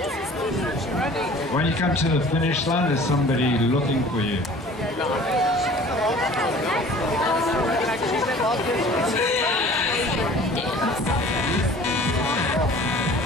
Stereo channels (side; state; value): both; normal; correlation 0.47